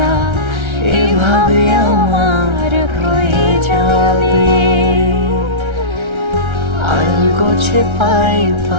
এভাবে আমার হয়ে যাবে আলগোছে পায়ে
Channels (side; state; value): left; late; 1.3 ms